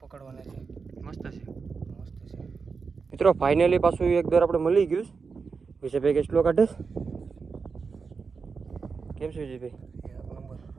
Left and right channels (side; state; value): left; quieter; 5.1 dB